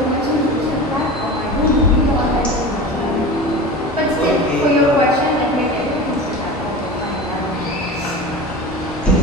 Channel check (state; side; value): normal; both; correlation 0.32